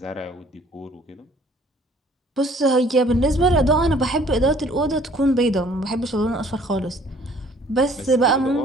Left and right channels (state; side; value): normal; both; correlation 0.57